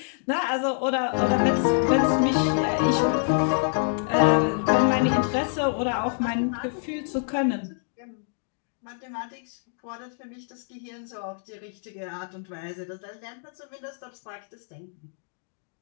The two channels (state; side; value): silent; right; digital silence